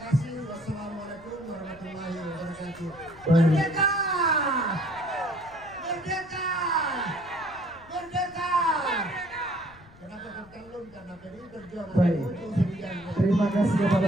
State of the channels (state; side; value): noise; left; rumble, 23 dB below the sound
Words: Wassalamualaikum warahmatullahi wabarakatuh. Merdeka! Baik, terima kasih kepada